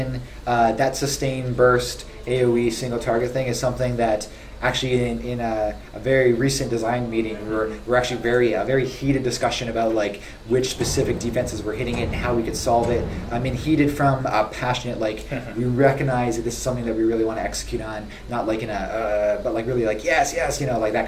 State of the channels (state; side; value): identical; both; correlation 1.00